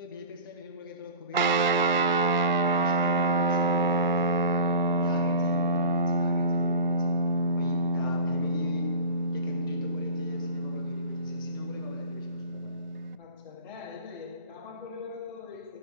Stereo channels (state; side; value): inverted; both; correlation -0.36